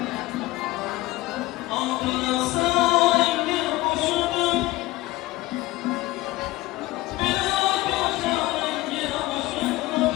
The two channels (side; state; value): right; quieter; 18.7 dB